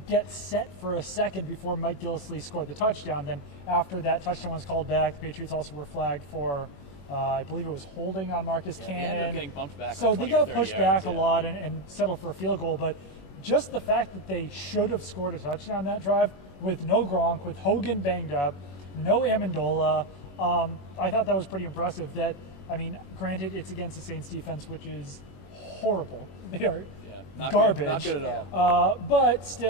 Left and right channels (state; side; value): late; right; 21 ms